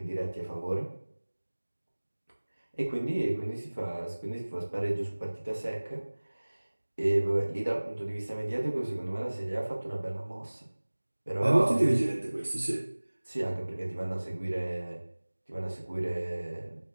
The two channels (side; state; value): both; inverted; correlation -1.00